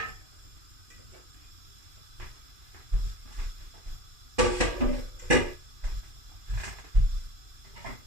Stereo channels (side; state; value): left; late; 2.5 ms